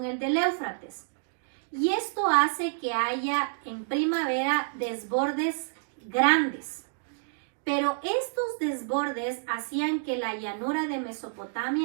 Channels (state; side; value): silent; left; digital silence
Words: el del Éufrates. Y esto hace que haya en primavera desbordes grandes. Pero estos desbordes hacían que la llanura de